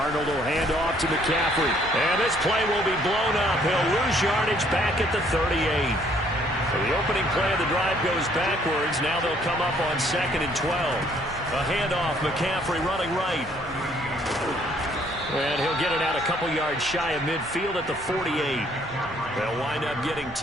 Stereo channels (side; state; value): both; normal; correlation 0.64